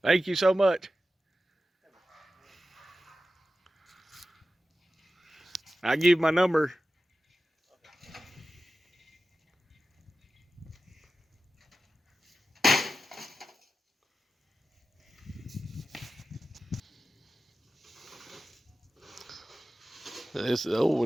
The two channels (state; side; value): normal; both; correlation 0.93